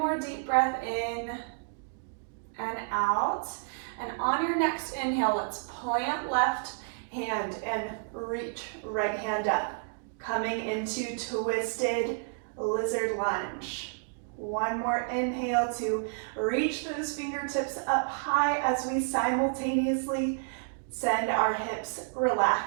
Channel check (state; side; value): silent; left; digital silence